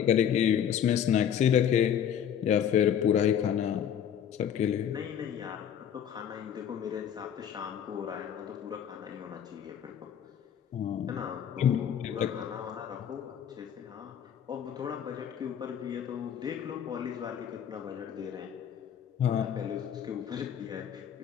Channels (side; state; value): right; quieter; 9.0 dB